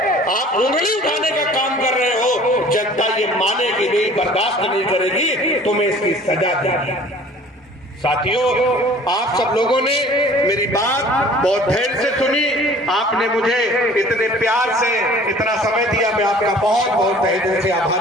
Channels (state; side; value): normal; both; correlation 0.49